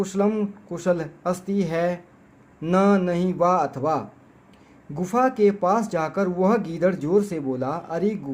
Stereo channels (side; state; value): both; identical; correlation 1.00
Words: कुशल अस्ति है, न नहीं वा अथवा। गुफा के पास जाकर वह गीदड़ जोर से बोला, अरे